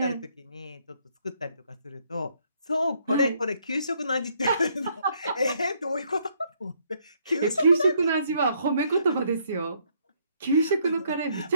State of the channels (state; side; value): inverted; both; correlation -0.69